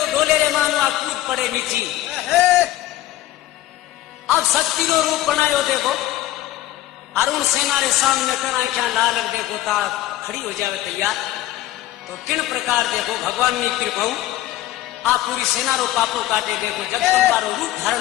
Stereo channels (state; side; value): quieter; right; 14.8 dB